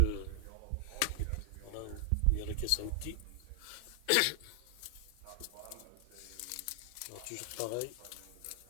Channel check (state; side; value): different; both; correlation 0.00